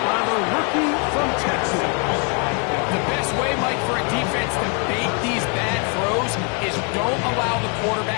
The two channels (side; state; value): right; quieter; 37.2 dB